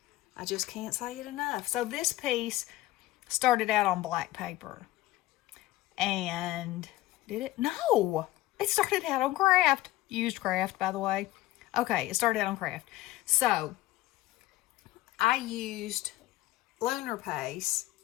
can't say it enough. So this piece started out on black paper. And did it? No. It started out on craft. Used craft, by the way. Okay, it started out on craft. So I used lunar paste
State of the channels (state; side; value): quieter; right; 16.9 dB